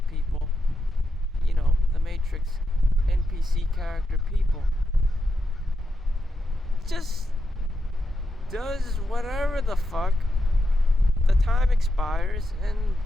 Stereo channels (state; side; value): normal; both; correlation 0.86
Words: people, you know, the Matrix NPC character people, just does whatever the fuck. The time expires and